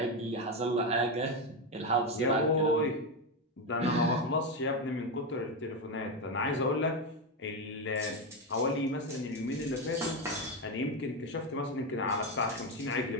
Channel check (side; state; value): both; normal; correlation 0.11